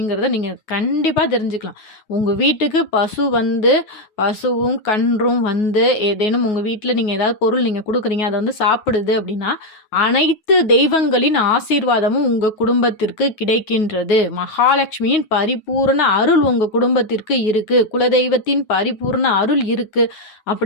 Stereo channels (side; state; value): right; late; 9.4 ms